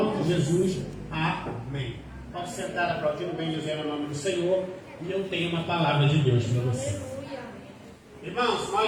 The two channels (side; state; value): both; identical; correlation 1.00